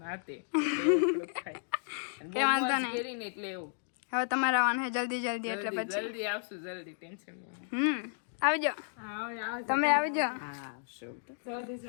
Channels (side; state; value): right; silent; digital silence